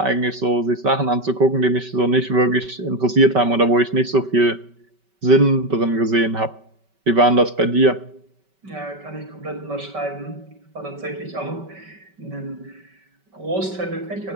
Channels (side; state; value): left; late; 5.2 ms